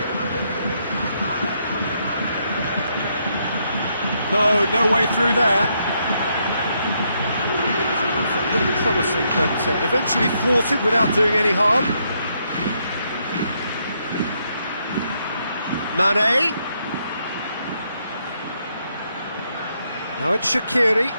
No, no way through there. A little promising, but eventually thwarted without doing any harm. Mane. Now it's Shaqiri.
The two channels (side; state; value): both; inverted; correlation -0.76